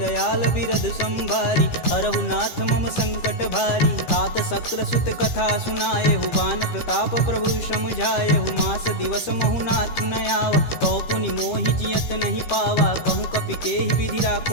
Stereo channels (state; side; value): late; right; 13 ms